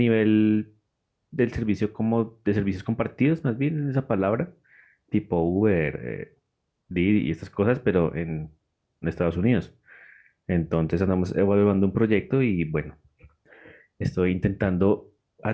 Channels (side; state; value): both; identical; correlation 1.00